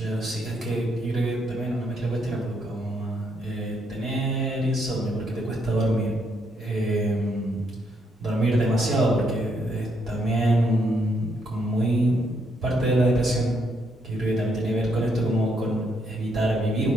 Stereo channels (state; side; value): normal; both; correlation 0.75